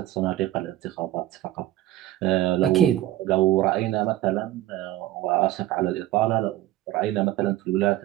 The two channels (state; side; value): quieter; left; 14.6 dB